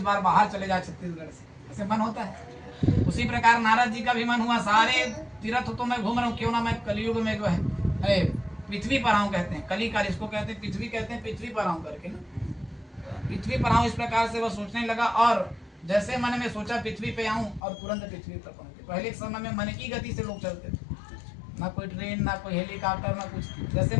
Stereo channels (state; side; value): drops out; right; at 17.6 s